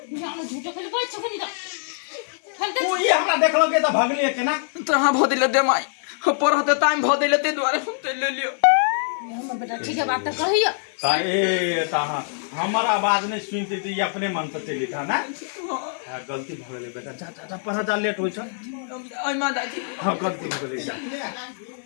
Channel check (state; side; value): silent; right; digital silence